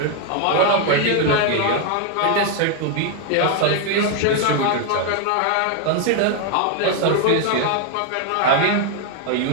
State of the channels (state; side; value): different; both; correlation 0.01